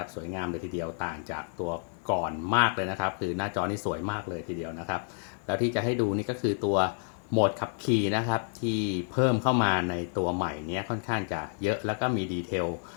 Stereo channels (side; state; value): right; silent; 58 dB below the other